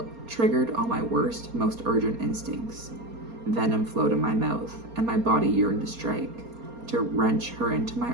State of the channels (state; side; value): late; left; 4.3 ms